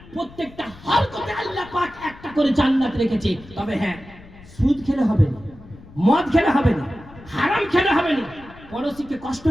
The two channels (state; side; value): noise; left; rumble, 21 dB below the sound